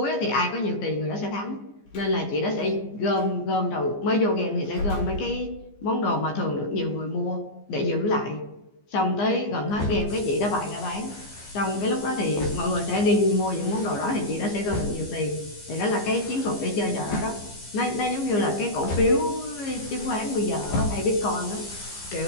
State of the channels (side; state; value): right; late; 15 ms